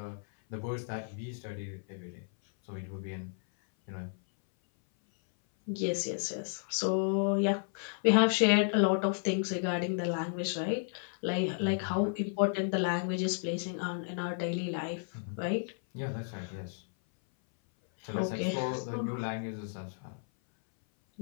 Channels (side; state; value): right; silent; 56 dB below the other